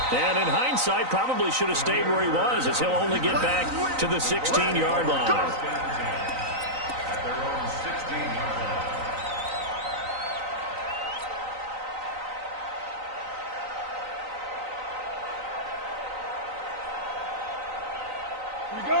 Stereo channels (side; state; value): left; late; 3.9 ms